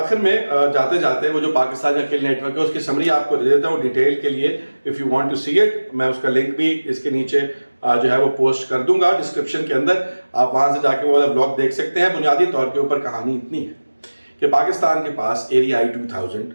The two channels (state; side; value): inverted; both; correlation -1.00